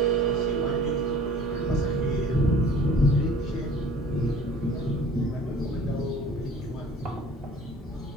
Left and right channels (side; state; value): both; normal; correlation 0.48